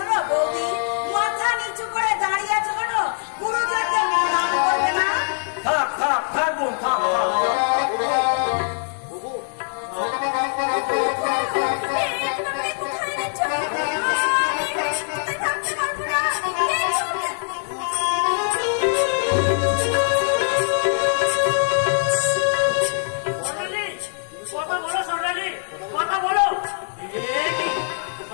বৌদি, মাথা নিচু করে দাঁড়িয়ে আছো কেন? গুরুজনদের প্রণাম করবে না? থাক থাক থাক বোন, থাক থাক। কোথায় নিচ্ছ? থাকতে পারবো না। কথা বলো সোনালি, কথা বলো।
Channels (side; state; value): right; silent; digital silence